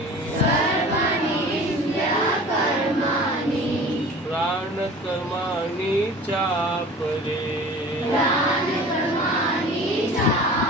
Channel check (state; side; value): normal; both; correlation 0.41